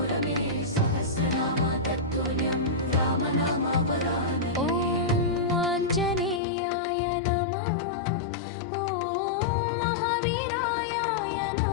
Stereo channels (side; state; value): right; drops out; at 6.4 s